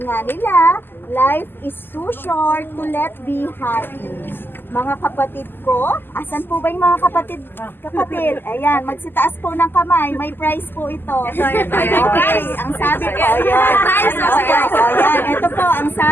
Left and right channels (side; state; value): right; late; 0.096 ms